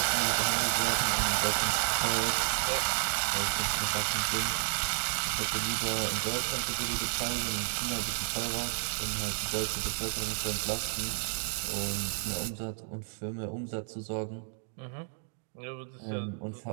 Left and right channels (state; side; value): silent; left; digital silence